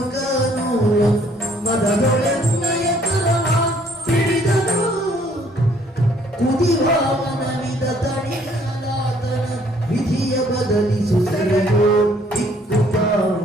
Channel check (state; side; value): normal; both; correlation 0.62